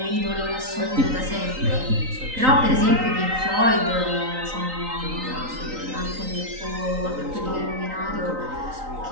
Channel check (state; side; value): late; left; 3.9 ms